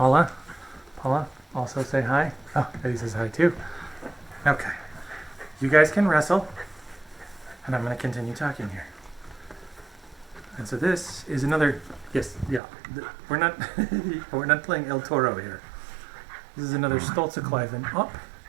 Paula, also say hi. Oh, Eddie says hi too. Okay. You guys can wrestle. And I'm going to continue talking here. And so this is another, yes, yeah, we're not we're not playing El Toro here. This is another Stolze-Cliven Up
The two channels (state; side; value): drops out; left; at 12.6 s